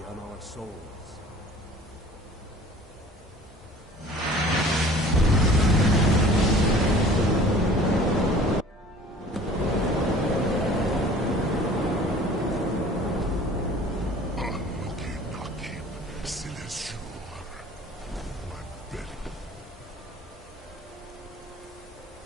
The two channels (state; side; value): normal; both; correlation 0.47